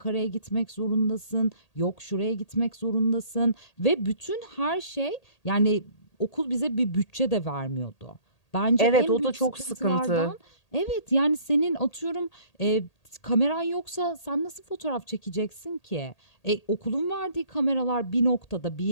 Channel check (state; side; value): late; right; 1.8 ms